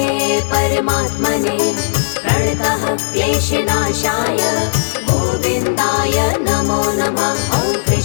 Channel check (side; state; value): right; silent; digital silence